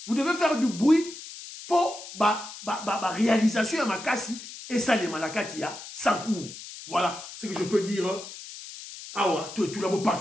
Vous devez faire du bruit pour réalisation à Makassi et ça les malakati à Sankourou. Voilà ce que je peux dire. Ah ouais, tout là, vous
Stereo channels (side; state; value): left; noise; hiss, 13 dB below the sound